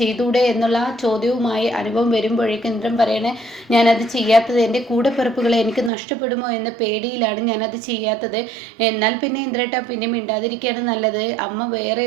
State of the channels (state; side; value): drops out; left; at 5.9 s